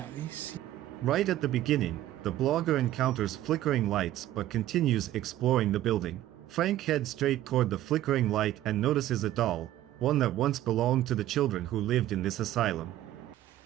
these... Right at the beginning, the blogger encounters flickering lights but continues exploring the building. Frank heads straight toward the flickering light and notices a doll, one that once belonged to the children who lived in this asylum.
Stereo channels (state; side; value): quieter; left; 13.8 dB